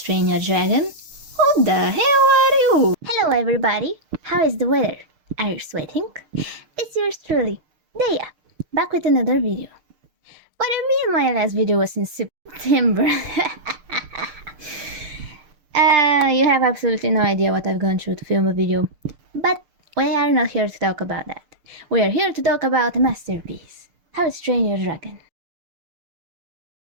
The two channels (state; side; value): late; left; 6.6 ms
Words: Train Your Dragon? Who the hell are you? Hello everybody. How is the weather? Are you sweating? It's yours truly, Daya, back with another video. What I mean, my last video was in September. You have absolutely no idea what I've gone through to film a video. But we are not here to talk about that. We are here to talk about a masterpiece, How to Train Your Dragon.